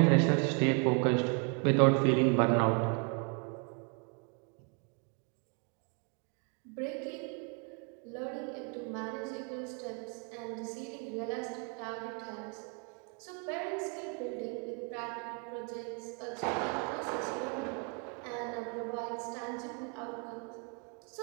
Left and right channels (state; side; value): quieter; left; 37.4 dB